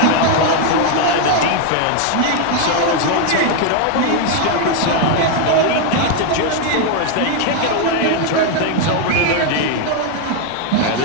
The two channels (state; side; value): different; both; correlation 0.01